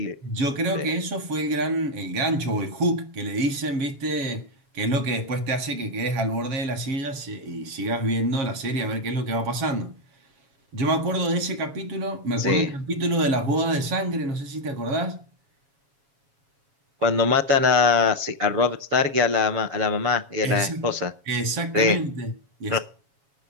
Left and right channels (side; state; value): left; late; 7.2 ms